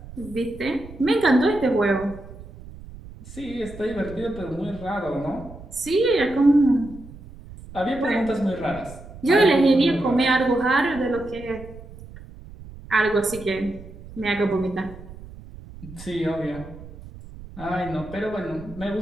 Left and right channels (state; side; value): noise; right; rumble, 16 dB below the sound